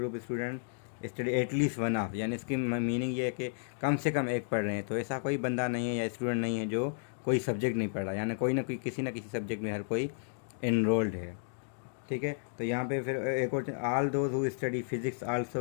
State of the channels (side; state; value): right; silent; digital silence